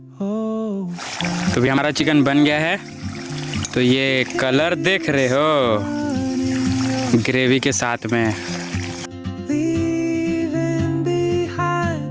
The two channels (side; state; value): both; identical; correlation 1.00